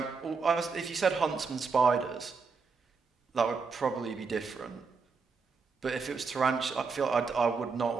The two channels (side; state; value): left; quieter; 4.9 dB